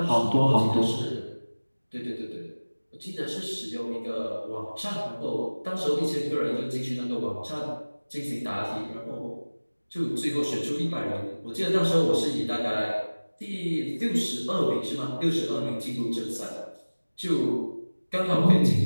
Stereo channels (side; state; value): both; inverted; correlation -1.00